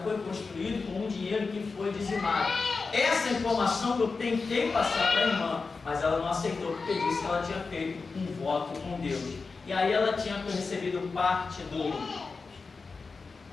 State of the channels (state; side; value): quieter; right; 4.4 dB